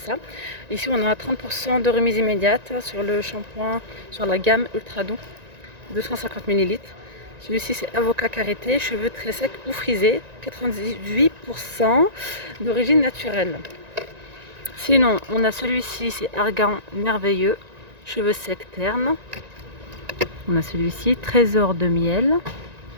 Ici on a 30% de remise immédiate sur le shampoing, sur la gamme Ultra Doux, 250 ml. Celui-ci c'est avocat karité, cheveux très secs ou frisés, 98% d'origine naturelle. Sinon on a celui-ci, c'est argan merveilleux, cheveux secs ternes. On a celui-ci, trésor de miel.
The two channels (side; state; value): left; late; 1.9 ms